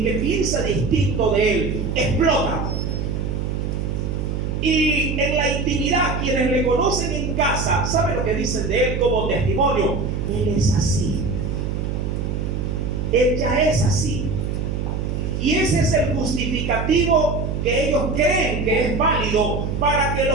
que piensa distinto de él, explota. Y en la intimidad, quienes le conocen en casa, ¿saben lo que dicen de él como testimonio? Él es así. Él ya es así. Y ese es el justificativo que ellos creen que es válido para que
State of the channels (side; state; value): right; noise; hum, 2 dB below the sound